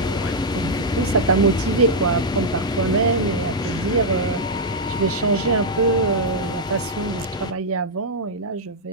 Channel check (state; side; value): normal; both; correlation -0.03